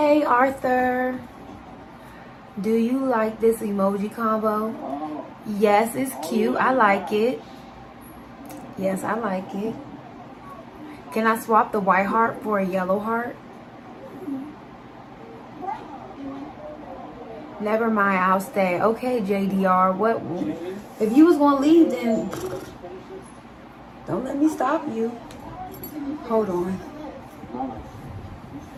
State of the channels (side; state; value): both; identical; correlation 1.00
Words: Arthur. Do you like this emoji combo? Yes, it's cute. I like it. Yes, I like it. Can I swap the white heart for a yellow heart? Never mind, I'll stay. Okay, JDR. What? If you was gonna leave, then don't let me stop you. Hold on.